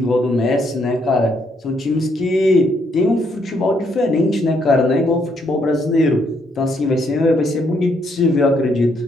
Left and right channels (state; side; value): normal; both; correlation 0.72